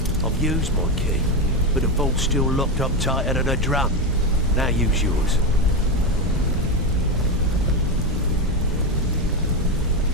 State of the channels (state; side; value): normal; both; correlation 0.12